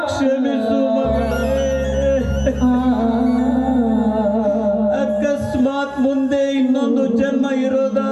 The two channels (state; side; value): identical; both; correlation 1.00